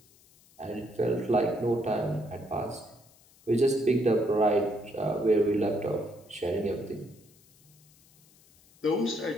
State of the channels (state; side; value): noise; left; hiss, 28 dB below the sound